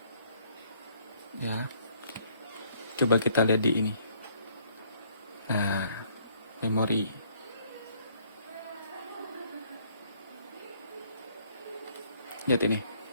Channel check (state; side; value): inverted; both; correlation -0.64